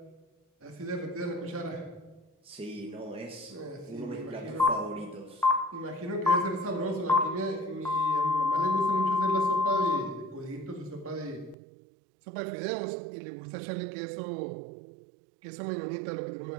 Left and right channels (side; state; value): left; drops out; at 11.6 s